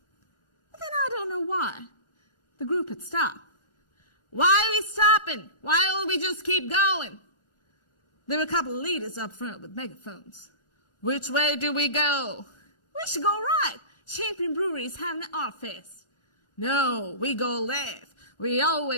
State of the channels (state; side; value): late; right; 1.4 ms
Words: But then I don't know why. The group had stopped. Why are we stopping? Why don't we just keep going? There were a couple of leaders up front with megaphones. Which way do we go? We should go right. Champion Brewery is having an art fest. No, we go left. We